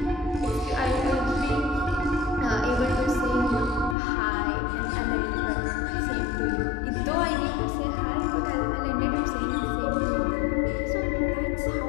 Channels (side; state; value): right; drops out; at 4.0 s